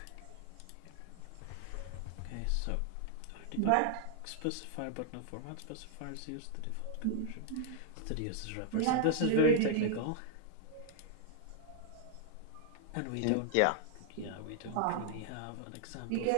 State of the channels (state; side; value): different; both; correlation -0.01